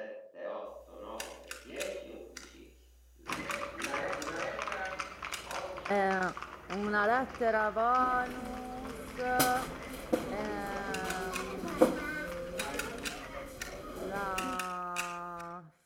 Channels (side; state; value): both; identical; correlation 1.00